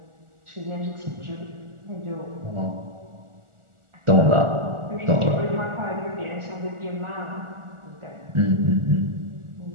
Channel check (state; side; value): late; left; 1.4 ms